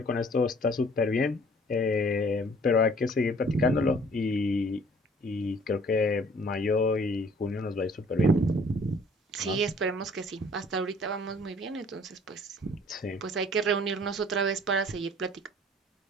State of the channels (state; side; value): normal; both; correlation 0.55